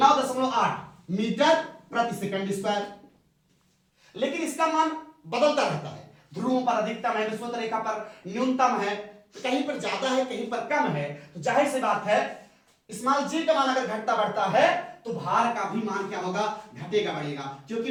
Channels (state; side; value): identical; both; correlation 1.00